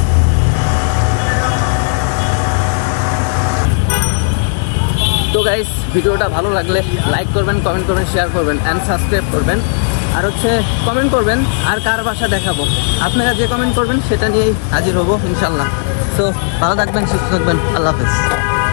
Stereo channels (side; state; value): right; silent; 69 dB below the other